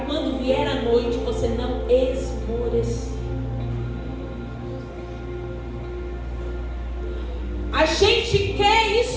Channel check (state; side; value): identical; both; correlation 1.00